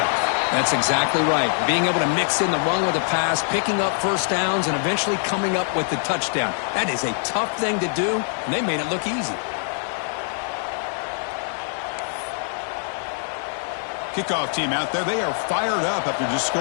That's exactly right. Being able to mix in the run with the pass, picking up 1st downs, and eventually coming up with the touchdown. That is a tough thing to do, and they made it look easy. Kickoff team out there. They are fired up after just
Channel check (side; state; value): right; silent; digital silence